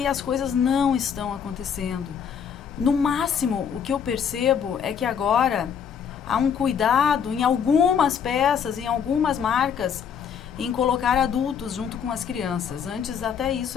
as coisas não estão acontecendo. No máximo, o que eu percebo é que agora há um cuidado em algumas peças, em algumas marcas, em colocar adultos junto com as crianças. Antes até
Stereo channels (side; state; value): right; quieter; 7.5 dB